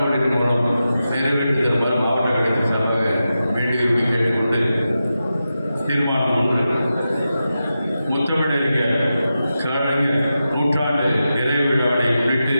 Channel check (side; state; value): both; inverted; correlation -0.90